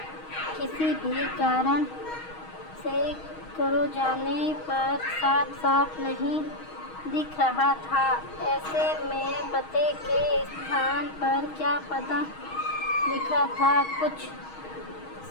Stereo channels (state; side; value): late; right; 6.3 ms